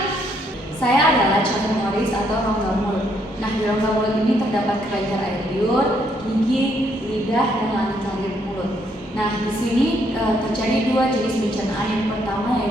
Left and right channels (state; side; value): normal; both; correlation 0.71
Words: Saya adalah calon Morris atau rongga mulut. Nah, di rongga mulut ini terdapat kelenjar air liur, gigi, lidah, dan langit-langit mulut. Nah, di sini terjadi 2 jenis pencernaan. Yang pertama